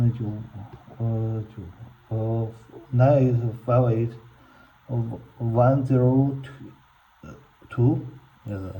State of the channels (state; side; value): identical; both; correlation 1.00